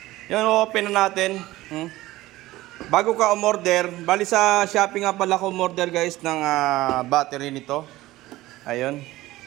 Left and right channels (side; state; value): left; quieter; 17.3 dB